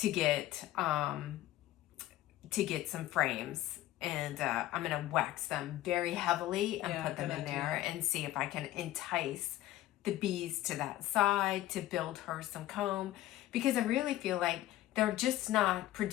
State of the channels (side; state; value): right; quieter; 15.1 dB